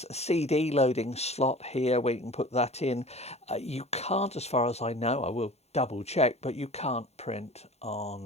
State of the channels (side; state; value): right; late; 0.31 ms